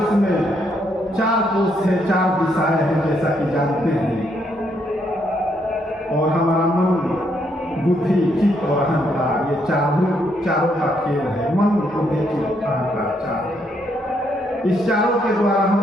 में 4 कोष है, 4 दिशाएं हैं, जैसा कि जानते हैं। और हमारा मन, बुद्धि, चित्त और अहंकार, ये चारों का खेल है। मन, बुद्धि, चित्त, अहंकार 4। इस चारों के द्वारा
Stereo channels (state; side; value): normal; both; correlation 0.74